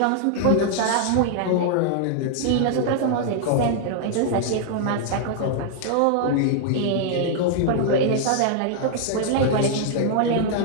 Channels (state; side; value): different; both; correlation -0.01